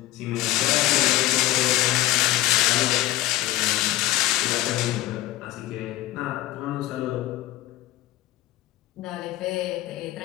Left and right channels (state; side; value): quieter; right; 15.6 dB